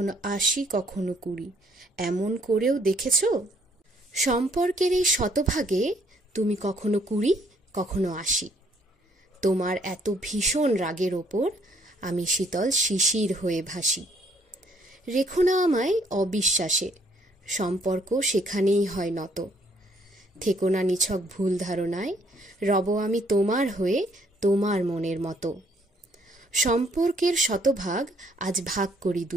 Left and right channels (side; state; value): both; normal; correlation 0.65